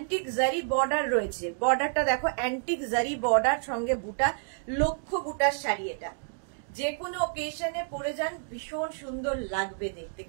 জারি বর্ডার রয়েছে, বর্ডারটা দেখো অ্যান্টিক জারি বর্ডার সঙ্গে বুটা, লক্ষ্য বুটার শাড়ি। এটা যে কোনো ওকেশনে পরে যান ভীষণ সুন্দর লাগবে দেখতে,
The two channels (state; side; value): silent; left; digital silence